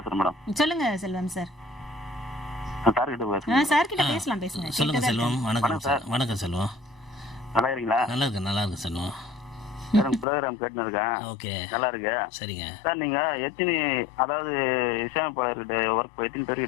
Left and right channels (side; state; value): right; drops out; at 10.2 s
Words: மேடம். சொல்லுங்க செல்வம் சார். சார் கிட்ட பேசுறேன். சார் கிட்ட பேசலாம், பேசுங்க. சொல்லுங்க செல்வம். வணக்கம் சார். வணக்கம் செல்வம். நல்லா இருக்கீங்களா? நல்லா இருக்கு செல்வம். ப்ரோக்ராம் கேட்டு இருக்கேன். ஓகே, நல்லா இருக்கு. சரிங்க சார். நீங்க எத்தனை அதாவது இசையமைப்பாளர்கிட்ட ஒர்க் எத்தனை